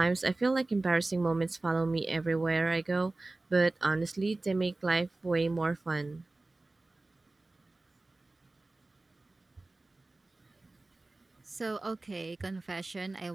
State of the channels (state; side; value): quieter; left; 3.0 dB